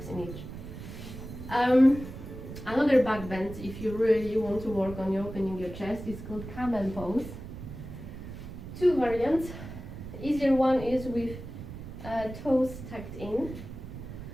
in each. Another back bend, if you really want to work on opening your chest, is called camel pose. 2 variants. Easier one is with toes tucked in,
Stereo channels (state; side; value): noise; right; rumble, 11 dB below the sound